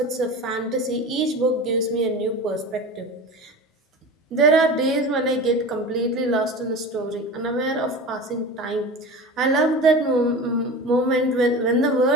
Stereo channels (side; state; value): both; normal; correlation 0.32